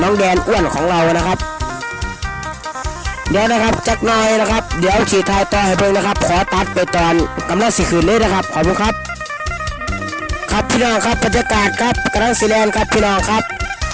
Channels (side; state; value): both; identical; correlation 1.00